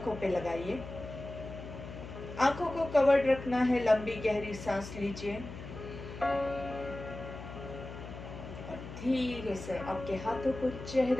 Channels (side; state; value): left; noise; hum, 11 dB below the sound